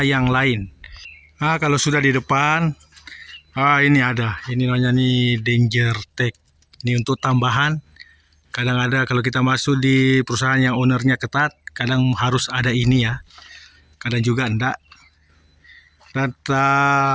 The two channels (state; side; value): identical; both; correlation 1.00